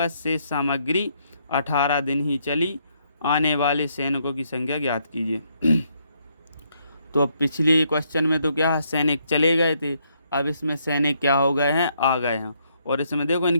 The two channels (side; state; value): both; inverted; correlation -0.73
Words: शेष सामग्री 18 दिन ही चली। आने वाले सैनिकों की संख्या ज्ञात कीजिए। तो अब पिछले क्वेश्चन में तो क्या सैनिक चले गए थे, अब इसमें सैनिक क्या हो गए हैं, आ गए हैं। और इसमें देखो